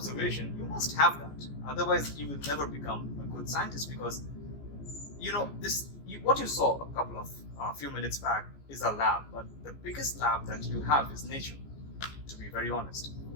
You must have that. Otherwise, you will never become a good scientist, because, what you saw a few minutes back is a lab, but the biggest lab that you have is nature, to be very honest.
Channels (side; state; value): right; late; 14 ms